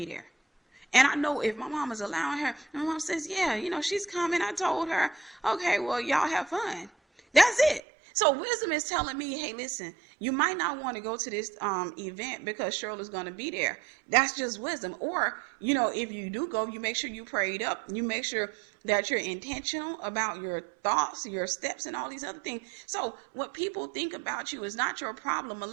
there? And I know if my mom is allowing her, and my mom says, yeah, she's coming. I told her, okay, well, y'all have fun. That's it. So wisdom is telling me, hey, listen, you might not want to go to this event because Cheryl is going to be there. That's just wisdom. Or, if you do go, you make sure you prayed up. You make sure that you're intentional about your thoughts, your steps, and all these other things. So what people think about you is not your problem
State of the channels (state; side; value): drops out; left; at 7.8 s